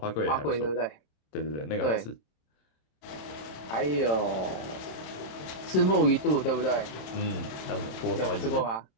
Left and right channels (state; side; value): late; right; 27 ms